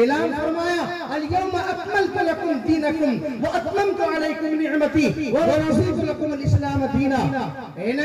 اعلان فرمایا اليوم اکملت لکم دینکم واتممت علیکم نعمتی ورضیت لکم الاسلام دینا. اے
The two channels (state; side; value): identical; both; correlation 1.00